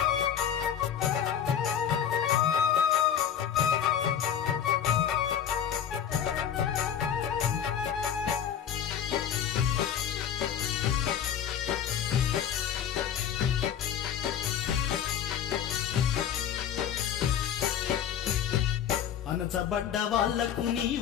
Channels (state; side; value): quieter; right; 9.0 dB